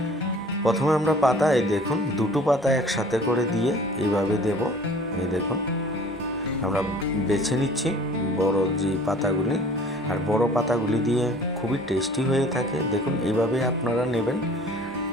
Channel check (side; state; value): both; normal; correlation 0.49